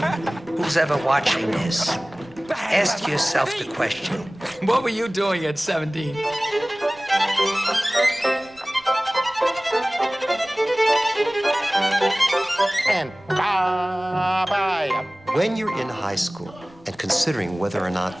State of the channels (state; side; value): noise; right; rumble, 28 dB below the sound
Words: Who's ever watching this? Ask yourself the question. What were you doing at 17? And when you're in high school and considering whether or not